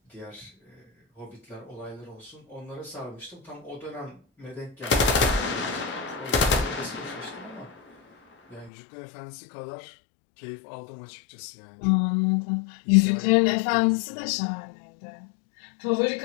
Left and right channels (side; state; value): right; drops out; at 8.7 s